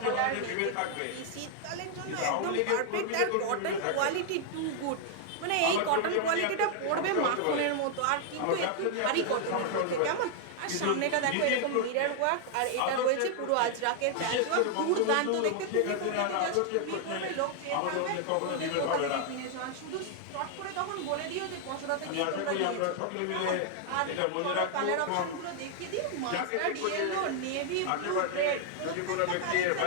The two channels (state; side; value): different; both; correlation 0.00